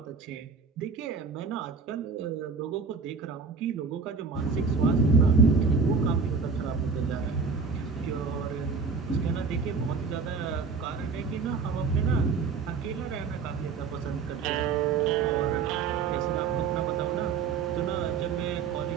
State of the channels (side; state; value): left; quieter; 5.2 dB